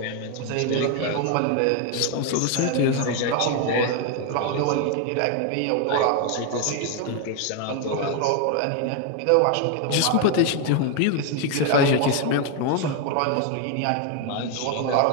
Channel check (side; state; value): both; different; correlation 0.01